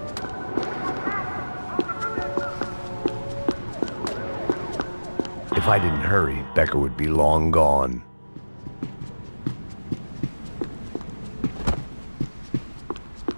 If I didn't hurry, Becker would be long gone.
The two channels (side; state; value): both; inverted; correlation -1.00